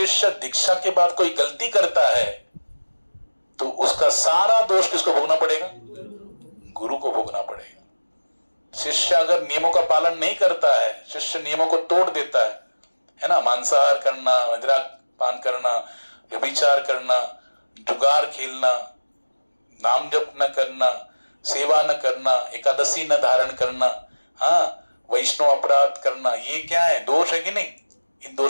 दीक्षा के बाद कोई गलती करता है तो उसका सारा दोष किसको भोगना पड़ेगा? गुरु को भोगना पड़ेगा। शिष्य अगर नियमों का पालन नहीं करता है, शिष्य नियमों को तोड़ देता है ना, मांसाहार करना, मदिरा पान करना, व्यभिचार करना, जुगार खेलना, नाम जप न करना, सेवा न करना, एकादशी न धारण करना, हाँ वैष्णव अपराध करना, ये क्या है? दोष है कि नहीं? इन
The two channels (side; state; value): both; inverted; correlation -1.00